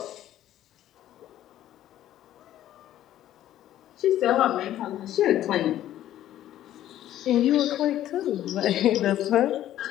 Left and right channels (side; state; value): right; quieter; 12.6 dB